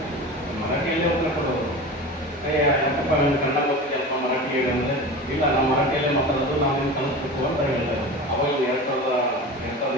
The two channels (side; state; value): both; normal; correlation 0.31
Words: ಮರಾಠಿಯಲ್ಲೇ ಉತ್ತರ ಕೊಡೋರು. ಯಾಕಪ್ಪ ನಿಮ್ಗೆ ಕನ್ನಡ ಗೊತ್ತಿದೆಯಪ್ಪ ಮರಾಠಿ ಹೇಳಿ ಅಂದರೆ, ಇಲ್ಲ ನಾವು ಮರಾಠಿಯಲ್ಲೇ ಮಾತಾಡೋದು, ನಾವು ನಿಮ್ಗೆ ಕಲಿಸ್ಬೇಕು ಅಂತ ಹೇಳ್ತಾರೆ. ಅವಾಗ